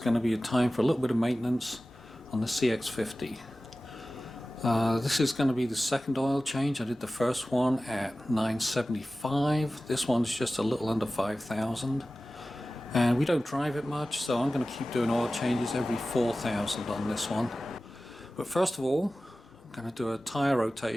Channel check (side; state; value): both; normal; correlation 0.96